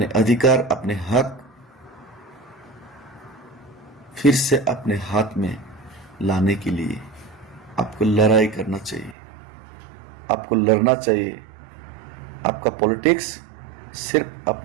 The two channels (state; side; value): drops out; left; at 9.2 s